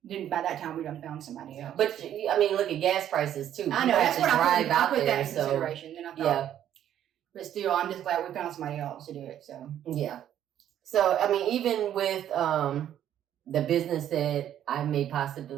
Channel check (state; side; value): quieter; left; 10.8 dB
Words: Then by that time we done found somebody else. But I mean, look at gas prices too. I know that's what I put that in consideration. Then I thought, but still, I'm just glad we found somebody else to do it. So yeah. So I mean, even with the business that I may